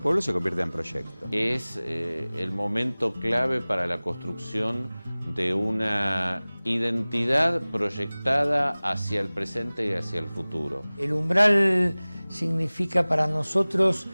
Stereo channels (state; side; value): inverted; both; correlation -0.99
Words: se convierte en proyecto. Es el momento clave para la construcción de una identidad proyectada hacia el presente y hacia el futuro. El umbral significa para nosotros